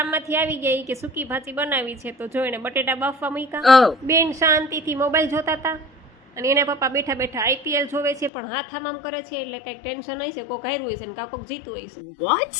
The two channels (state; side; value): drops out; right; at 8.3 s